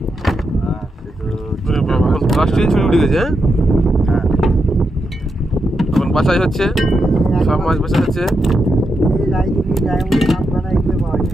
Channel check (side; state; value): both; normal; correlation 0.85